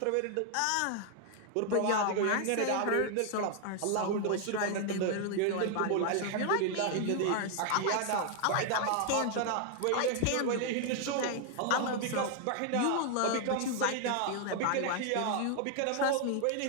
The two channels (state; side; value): different; both; correlation 0.00